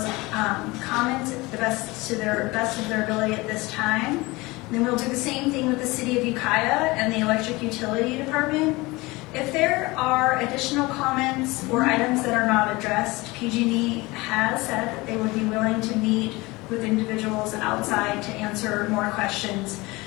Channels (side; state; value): right; quieter; 22.5 dB